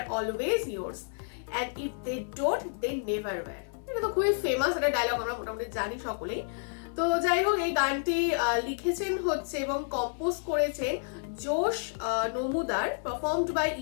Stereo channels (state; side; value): silent; right; 58 dB below the other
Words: always yours. And if they don't, they never were." এটা তো খুবই famous একটা dialogue, আমরা মোটামুটি জানি সকলেই। তো যাই হোক, এই গানটি লিখেছেন হচ্ছে এবং কম্পোজ করেছেন Josh Namudar, performed by